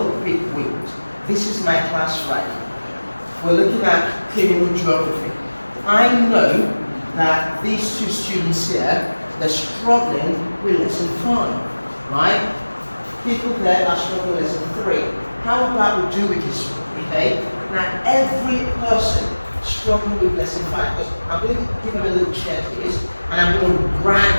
quick wins. This is my class right. We're looking at criminal geography. I know that these two students here, they're struggling with lesson 5, right? People there are struggling with lesson 3. How about we do it this way, okay? Now, every person struggling with lesson 5, because I'm going to give them a little checklist, and I'm going to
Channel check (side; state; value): both; inverted; correlation -1.00